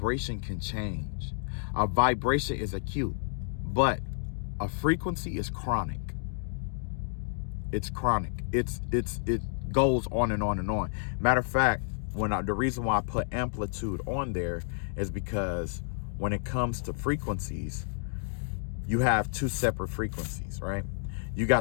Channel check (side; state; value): right; silent; digital silence